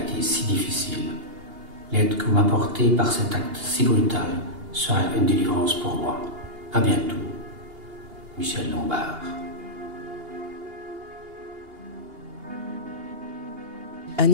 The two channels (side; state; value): left; late; 2.8 ms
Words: si difficile. L'aide que vous m'apportez par cet acte si brutal sera une délivrance pour moi. À bientôt. Michel Lombard.